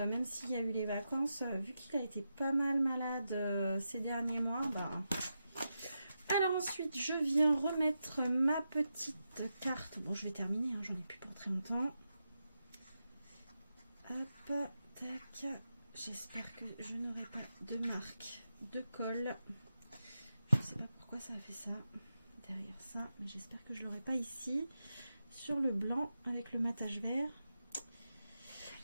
même s'il y a eu les vacances, vu qu'il a été pas mal malade ces derniers mois, alors ensuite je viens remettre ma petite carte. Bon, je vais terminer, hein, j'en ai plus pour très longtemps. Hop, tac. J'espère que je n'aurai pas de marque de colle. Je ne sais pas pourquoi ça a fait ça derrière ça, mais j'espère que je l'aurai pas ici sur le blanc avec le matage vert.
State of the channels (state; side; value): inverted; both; correlation -0.88